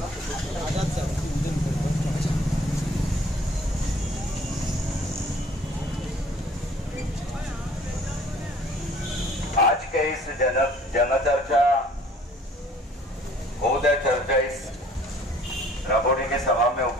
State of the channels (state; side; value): normal; both; correlation 0.55